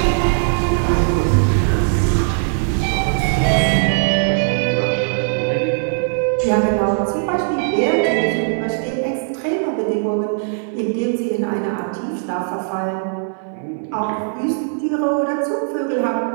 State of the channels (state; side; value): silent; left; 62 dB below the other